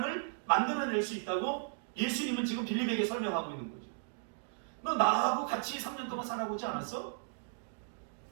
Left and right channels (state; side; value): silent; left; digital silence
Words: 만들어낼 수 있다고 예수님은 지금 빌립에게 설명하고 있는 거죠. 너 나하고 같이 3년 동안 살아보지 않았어?